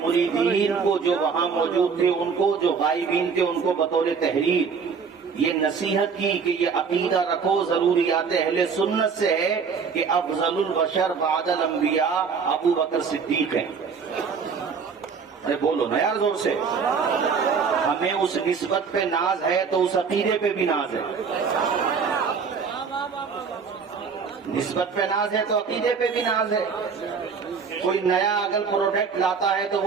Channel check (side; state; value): left; quieter; 5.8 dB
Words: مریدین کو جو وہاں موجود تھے، ان کو جو غائبین تھے، ان کو بطور تحریر یہ نصیحت کی کہ یہ عقیدہ رکھو، ضروریات اہل سنت سے ہے کہ افضل البشر بعد الانبیاء ابو بکر صدیق ہیں۔ ارے بولو نا یار زور سے۔ ہمیں اس نسبت پہ ناز ہے تو اس عقیدے پہ بھی ناز ہے۔ نسبت پہ ناز ہے تو عقیدے پہ بھی ناز ہے۔ کوئی نیا اگر پروڈکٹ لاتا ہے تو